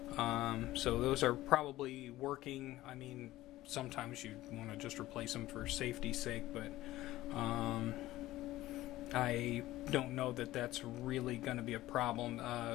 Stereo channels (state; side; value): quieter; right; 16.3 dB